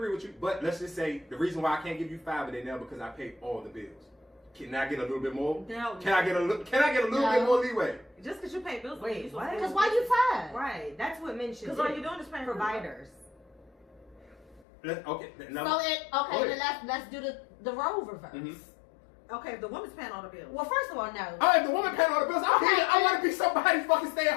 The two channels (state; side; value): drops out; right; at 14.6 s